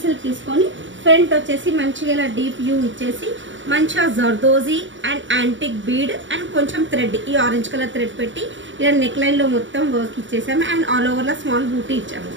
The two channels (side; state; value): left; late; 0.55 ms